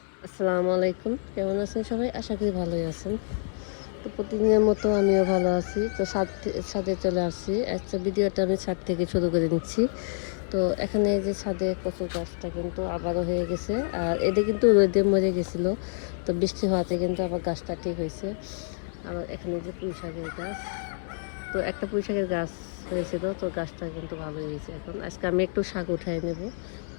আসসালামু আলাইকুম, কেমন আছেন সবাই? আশা করি ভালোই আছেন। তো প্রতিদিনের মতো আমিও ভালো আছি। তো ছাদে চলে আসছি। আজকে ভিডিওটা আমি ছাদ থেকে শুরু করে নিচ্ছি। তো এখানে এই যে ছাদে কচুর গাছটা কিন্তু আবারও হয়ে গেছে, আর এটা কিন্তু রোদে মরে গেছিল। তো বৃষ্টি হওয়াতে কিন্তু আবার গাছটা ঠিক হয়েছে। আবার এখানে যে পুঁই শাকের গাছ, তো একটা পুঁই শাকের গাছ হয়েছিল, তো গাছটা কিন্তু ভালো হয়েছে। এখন আজকে আমি একটু শাক উঠাই নেব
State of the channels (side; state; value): right; silent; 60 dB below the other